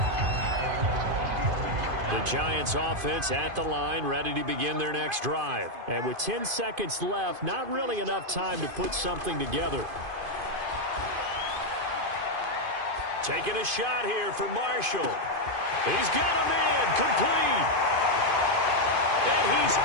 The Giants offense at the line, ready to begin their next drive. And with 10 seconds left, not really enough time to put something together. Taking a shot here for Marshall. He's got him in, complete. And he's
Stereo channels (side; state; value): left; late; 2.5 ms